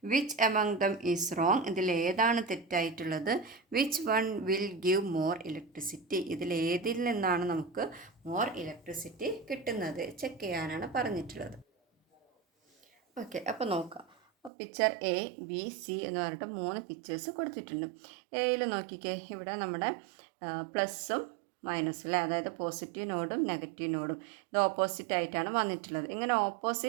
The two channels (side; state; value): left; drops out; at 14.5 s